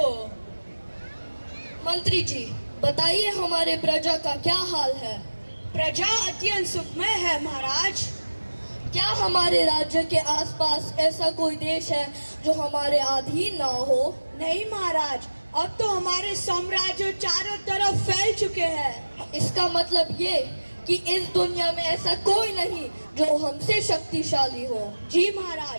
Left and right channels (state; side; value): inverted; both; correlation -1.00